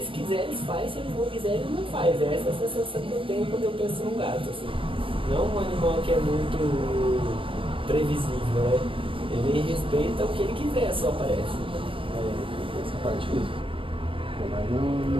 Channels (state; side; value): late; left; 0.25 ms